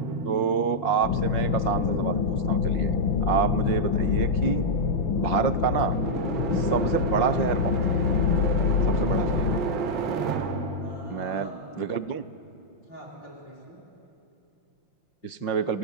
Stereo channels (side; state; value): right; late; 5.6 ms